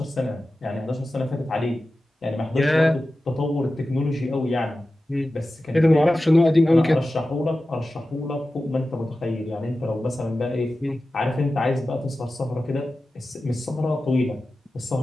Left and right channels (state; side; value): normal; both; correlation 0.94